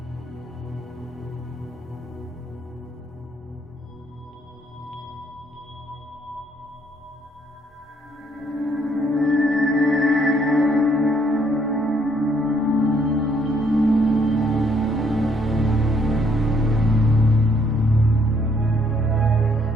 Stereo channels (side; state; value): both; normal; correlation 0.68